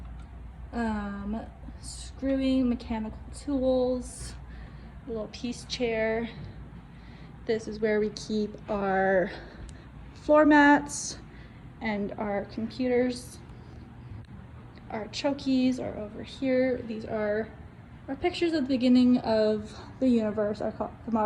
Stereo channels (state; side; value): identical; both; correlation 1.00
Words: Screwing, mechanical tools, a little peace chair. This is where we keep our floor mats and our computers. Our chokies are over here. These are our pictures at the beginning of the universe from